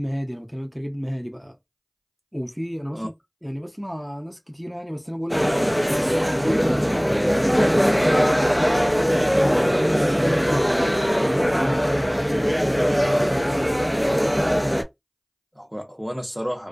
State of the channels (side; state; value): both; identical; correlation 1.00